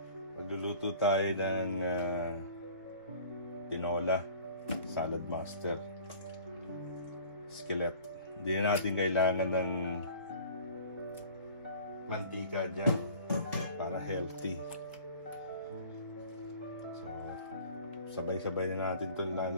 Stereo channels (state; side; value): inverted; both; correlation -0.46